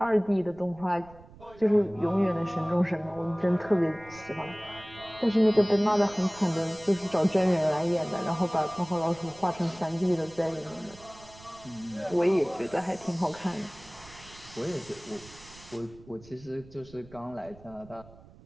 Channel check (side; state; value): right; noise; rumble, 22 dB below the sound